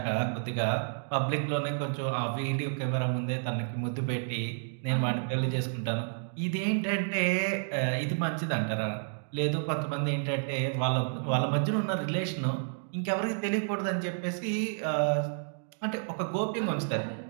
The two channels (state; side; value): silent; left; digital silence